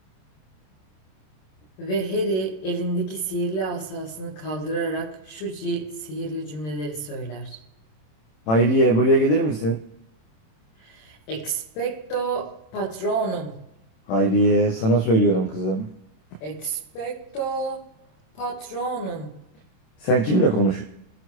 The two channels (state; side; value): late; right; 27 ms